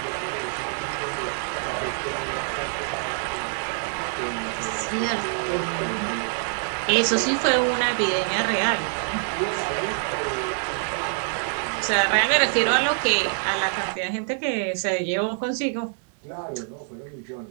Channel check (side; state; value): left; silent; digital silence